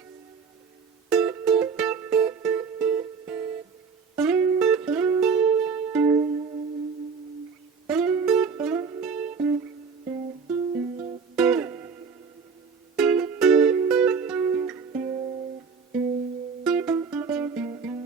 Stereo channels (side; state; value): left; quieter; 5.5 dB